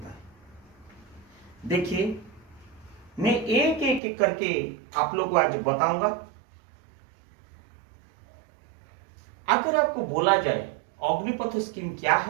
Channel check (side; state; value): left; drops out; at 4.0 s